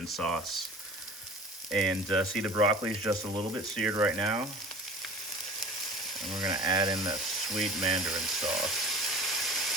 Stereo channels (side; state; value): both; normal; correlation 0.40